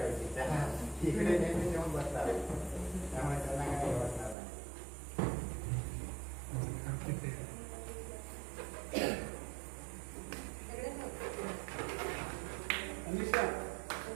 त्या इकडे नेहमी येऊन बसतात त्यामुळे त्यांना काही वाटणार नाही. अनिशा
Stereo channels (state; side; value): drops out; left; at 4.4 s